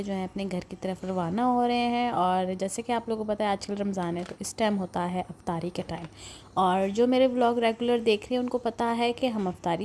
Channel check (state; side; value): identical; both; correlation 1.00